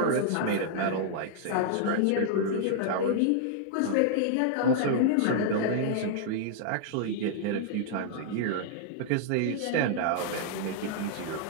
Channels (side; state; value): both; different; correlation -0.01